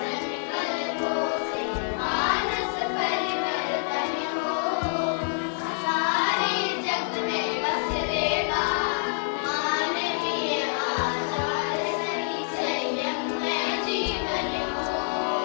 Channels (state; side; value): silent; right; digital silence